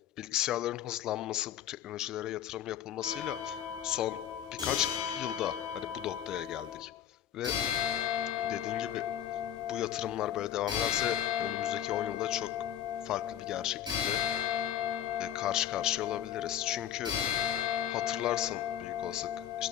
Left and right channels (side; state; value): right; quieter; 10.7 dB